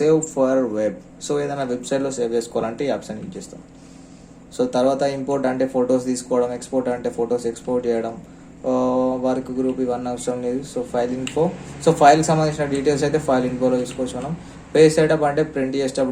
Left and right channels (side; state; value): both; identical; correlation 1.00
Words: ఫర్ వెబ్. సో ఏదైనా వెబ్సైట్లో సేవ్ చేసుకోవాలంటే ఈ ఆప్షన్ యూజ్ చేస్తాం. సో తర్వాత ఇంపోర్ట్ అంటే ఫొటోస్ తీసుకోవడం, ఎక్స్పోర్ట్ అంటే ఫొటోస్ ఎక్స్పోర్ట్ చేయడం, వర్క్ గ్రూప్ ఇవన్నీ అవసరం లేదు. సో ఫైల్ ఇన్ఫో, సో ఫైల్కి సంబంధించిన డీటెయిల్స్ అయితే ఫైల్ ఇన్ఫోలో తీసుకోవచ్చు మనం. పేజ్ సెటప్ అంటే ప్రింట్